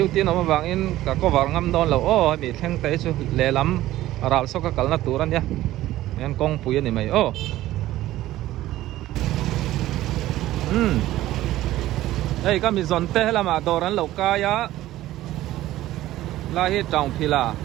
tiên nó vàng in cả có vàng ngâm đòn là ô bị thằng té cho lẹ lắm rào sau cái cẩn là tủ ra nhá nên công pui này mày ô hey kami zonte lama doran lokaya lahi tang phila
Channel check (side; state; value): left; quieter; 15.1 dB